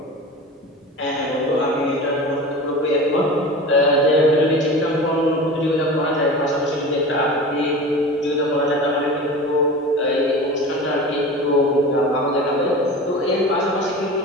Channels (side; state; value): both; normal; correlation 0.33